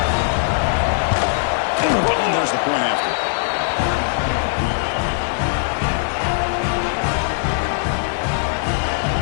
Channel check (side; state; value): right; silent; digital silence